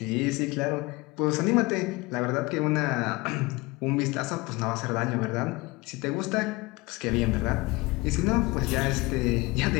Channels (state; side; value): quieter; right; 23.1 dB